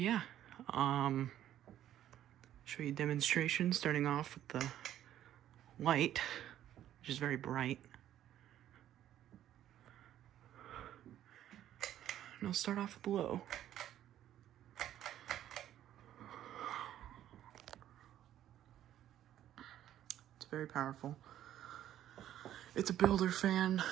show you a demonstration starting off with the light, which is very bright. And I'll start off with low. It's very powerful. It's a builder fan,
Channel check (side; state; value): left; quieter; 11.8 dB